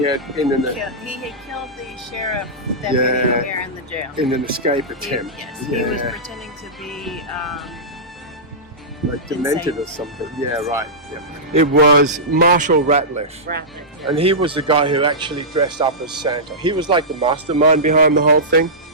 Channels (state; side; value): normal; both; correlation -0.15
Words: had He had killed the sheriff deputy here in the jail. in an escape attempt. He was pretending to be like demented or something. Yeah, right. Yeah. It was Marshall Ratliff. And he was the guy who actually dressed up as Santa. He was like the mastermind behind the whole thing.